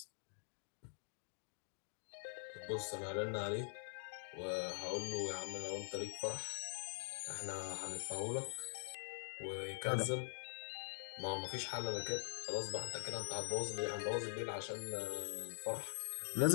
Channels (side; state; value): right; silent; digital silence